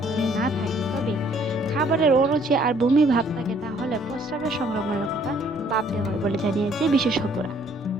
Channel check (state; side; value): normal; both; correlation 0.62